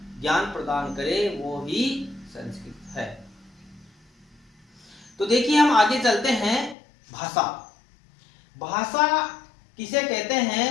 ज्ञान प्रदान करे, वो ही संस्कृत है। तो देखिए, हम आगे चलते हैं। भाषा, भाषा किसे कहते हैं?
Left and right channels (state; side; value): drops out; right; at 6.8 s